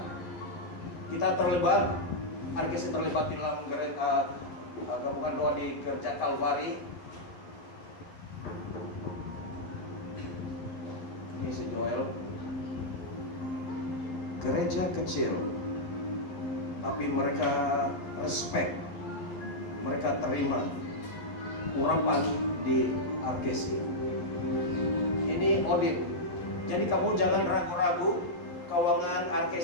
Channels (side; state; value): right; late; 11 ms